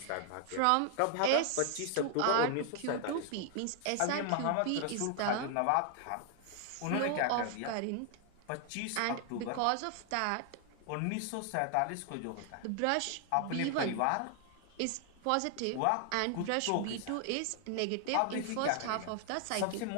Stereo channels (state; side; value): different; both; correlation 0.00